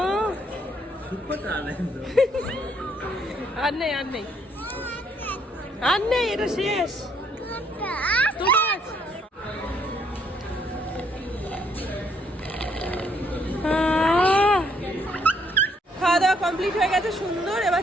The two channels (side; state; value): both; normal; correlation 0.69